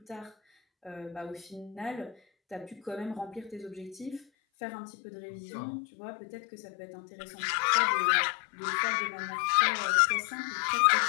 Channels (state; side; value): drops out; right; at 4.2 s